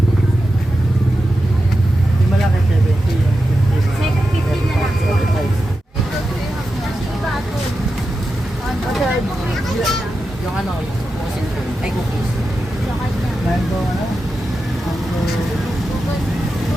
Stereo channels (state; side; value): normal; both; correlation 0.90